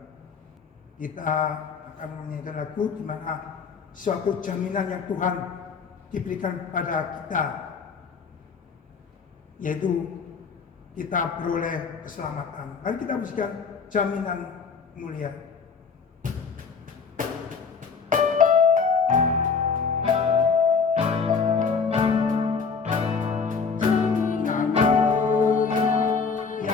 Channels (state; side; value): quieter; right; 5.4 dB